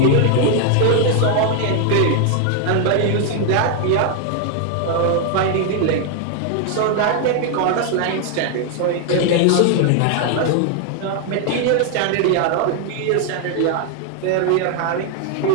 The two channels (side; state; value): both; different; correlation 0.00